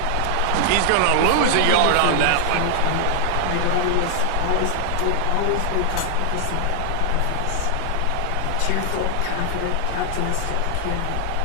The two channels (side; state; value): both; different; correlation 0.00